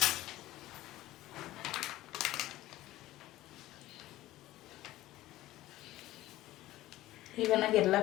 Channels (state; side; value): quieter; right; 16.0 dB